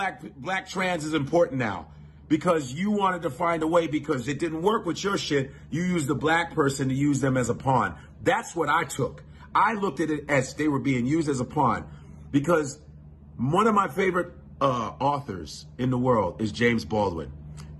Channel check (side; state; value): both; identical; correlation 1.00